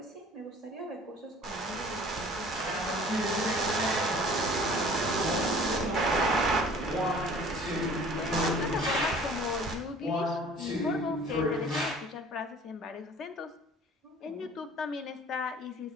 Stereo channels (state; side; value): normal; both; correlation 0.49